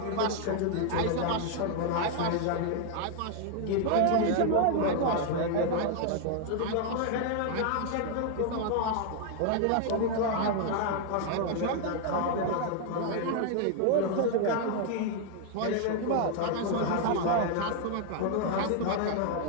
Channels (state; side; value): different; both; correlation 0.00